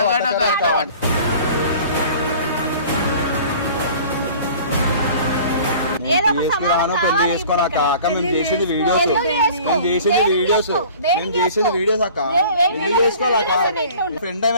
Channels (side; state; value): both; inverted; correlation -0.47